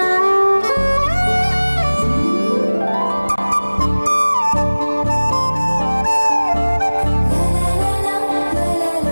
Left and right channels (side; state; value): both; inverted; correlation -1.00